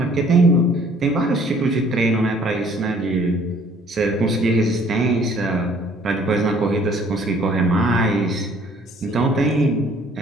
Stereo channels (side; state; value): both; normal; correlation 0.58